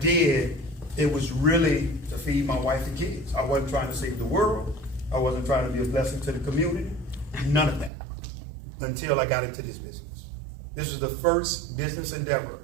it was really to feed my wife and kids. I wasn't trying to save the world. I wasn't trying to be a blessing to the community. None of that until I got into this business. This was the first business endeavor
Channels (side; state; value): left; drops out; at 7.9 s